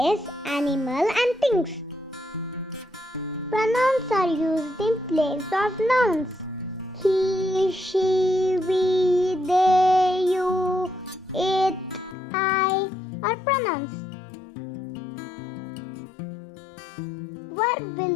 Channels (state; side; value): drops out; right; at 12.2 s